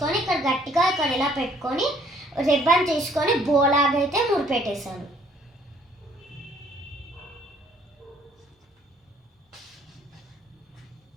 ఇక్కడ గట్టిగా ఇక్కడ ఇలా పెట్టుకొని రిబ్బన్ తీసుకొని బోలాగా అయితే ముడిపెట్టేశాను.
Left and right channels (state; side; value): normal; both; correlation 0.62